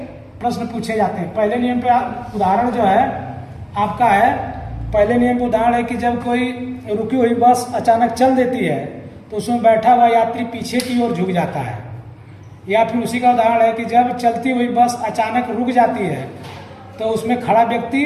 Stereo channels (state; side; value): identical; both; correlation 1.00